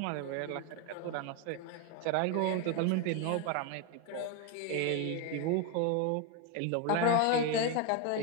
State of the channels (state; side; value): different; both; correlation 0.01